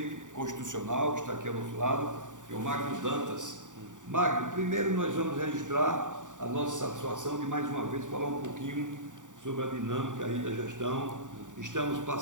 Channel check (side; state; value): left; late; 0.87 ms